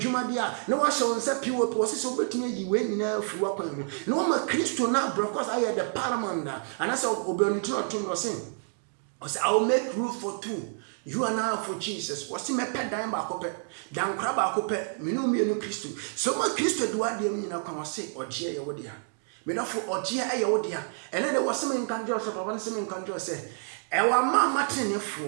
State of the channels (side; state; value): left; silent; 59 dB below the other